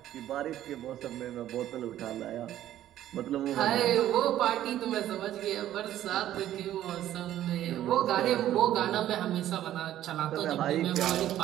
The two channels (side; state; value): left; quieter; 12.6 dB